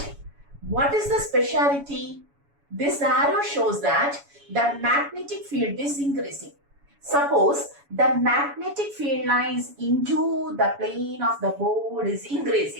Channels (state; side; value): late; left; 7.1 ms